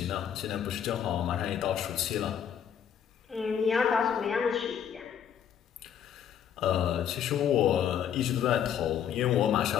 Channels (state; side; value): quieter; right; 8.8 dB